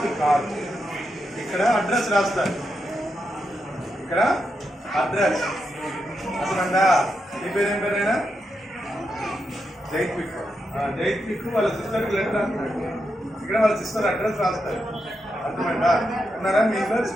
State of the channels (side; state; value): both; normal; correlation 0.85